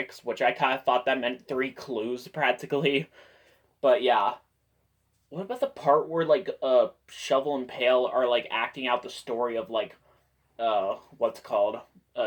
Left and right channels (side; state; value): both; identical; correlation 1.00